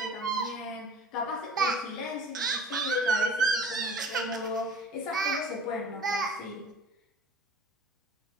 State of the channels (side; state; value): both; normal; correlation 0.44